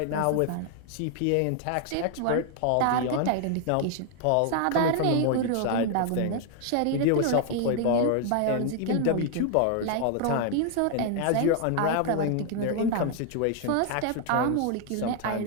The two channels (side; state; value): both; different; correlation 0.00